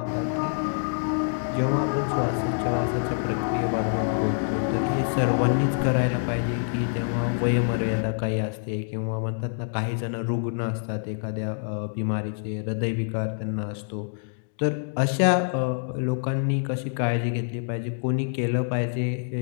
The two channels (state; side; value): silent; right; digital silence